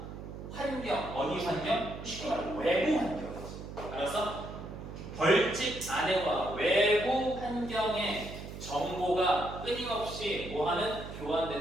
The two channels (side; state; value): right; noise; hum, 10 dB below the sound